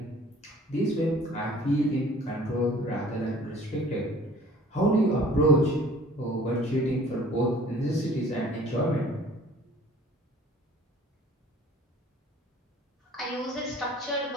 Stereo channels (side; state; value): both; normal; correlation 0.51